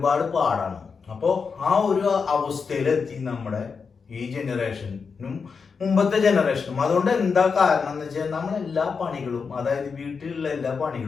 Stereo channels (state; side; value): quieter; right; 5.4 dB